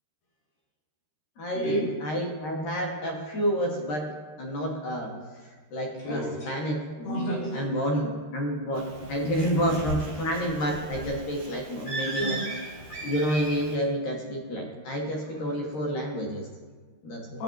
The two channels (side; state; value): right; late; 13 ms